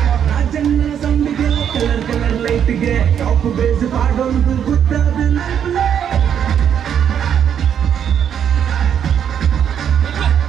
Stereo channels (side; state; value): left; quieter; 8.7 dB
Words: ಕಲರ್ ಕಲರ್ ಲೈಟ್ಗೆ ಟಾಪ್ ಬೇಸ್ ಪಾಡೋದು ಗೊತ್ತಾದ